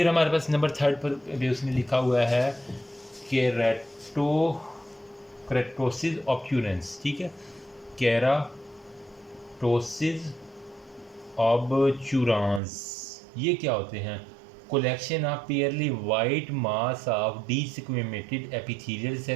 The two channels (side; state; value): left; drops out; at 12.6 s